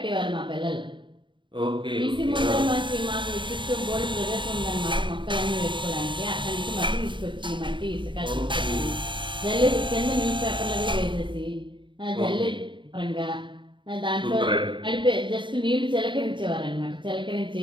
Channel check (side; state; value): left; late; 0.23 ms